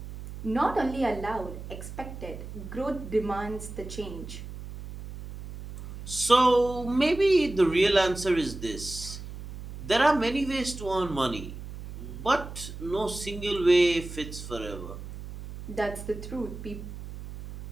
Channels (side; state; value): right; noise; hum, 11 dB below the sound